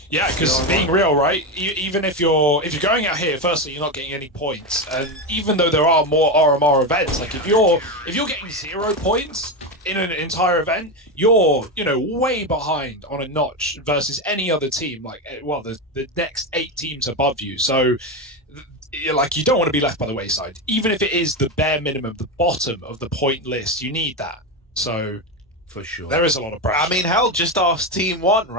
Yeah, because being real, right? Even if you're going out here, firstly, you're not getting any points, and even though there are more RMR events, like if you're getting 0 points in an entire event, you're way behind on a notch versus any other team. Like, well, the next 8 teams above you. So, like, you don't want to be left by the wayside, even if it is the bare minimum, the bottom of the point list. You need that. So. For sure. There is a lot of pressure. I mean, hell, just ask Team 1,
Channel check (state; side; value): normal; both; correlation 0.14